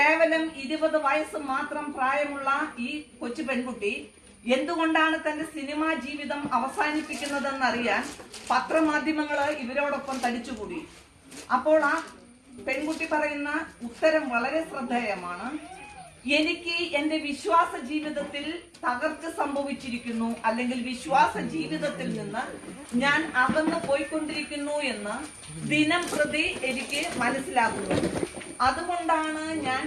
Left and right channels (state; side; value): identical; both; correlation 1.00